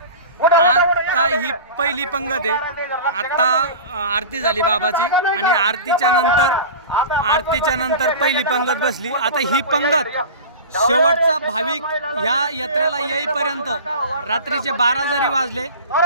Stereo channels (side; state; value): both; inverted; correlation -0.34